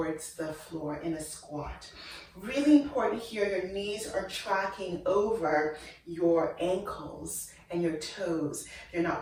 the floor in a squat. Really important here, your knees are tracking over your ankles and your toes. They're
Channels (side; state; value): both; identical; correlation 1.00